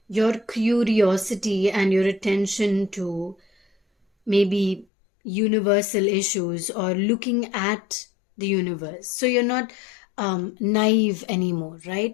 Your curiosity and your attention to maybe universal issues or looking at the universe. So you're not naive anymore,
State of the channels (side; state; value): right; drops out; at 4.9 s